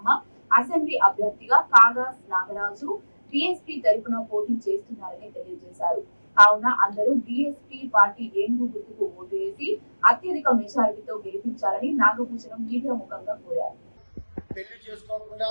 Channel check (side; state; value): both; inverted; correlation -1.00